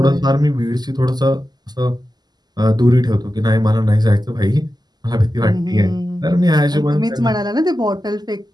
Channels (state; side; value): late; left; 0.20 ms